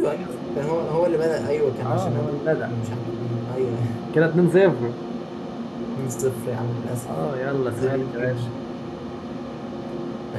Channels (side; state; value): both; identical; correlation 1.00